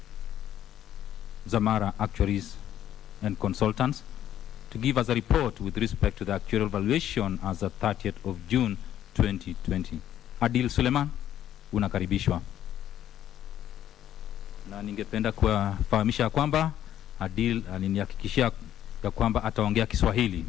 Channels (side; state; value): right; quieter; 11.4 dB